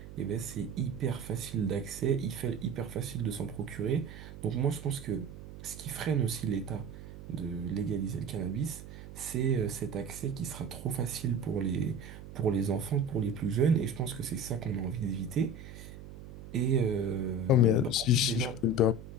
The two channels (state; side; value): noise; right; hum, 14 dB below the sound